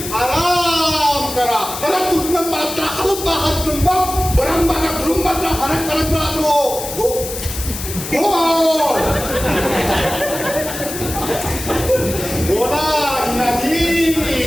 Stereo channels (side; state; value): left; noise; hiss, 8 dB below the sound